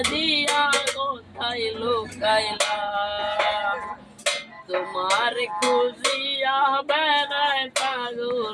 দিয়া কোথায় লুকাইলা, তোমার খুঁজিয়া বেড়ায়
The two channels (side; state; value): both; identical; correlation 1.00